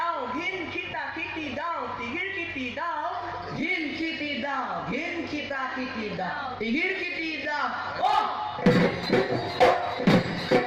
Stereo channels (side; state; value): both; identical; correlation 1.00